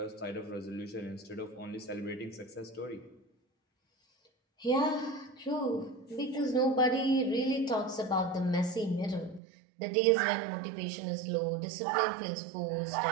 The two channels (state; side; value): drops out; left; at 9.4 s